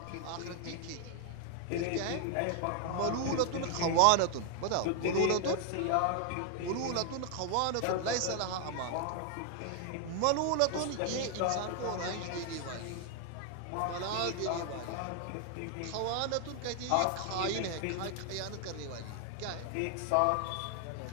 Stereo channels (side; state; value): both; different; correlation 0.00